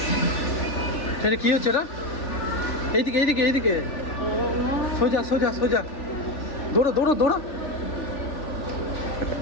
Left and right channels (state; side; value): late; right; 3.4 ms